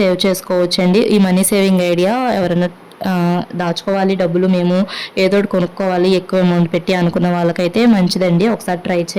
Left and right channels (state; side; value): identical; both; correlation 1.00